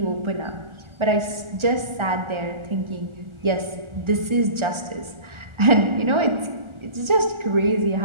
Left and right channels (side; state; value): left; late; 1.4 ms